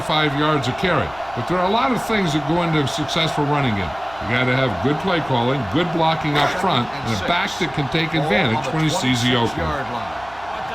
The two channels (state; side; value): noise; right; hum, 23 dB below the sound